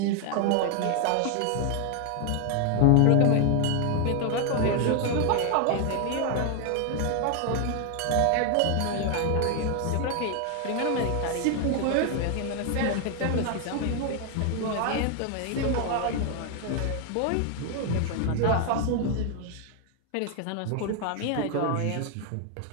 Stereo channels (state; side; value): different; both; correlation 0.01